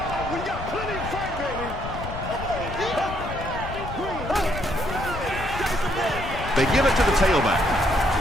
They give it to the tailback.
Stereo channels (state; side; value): noise; left; rumble, 8 dB below the sound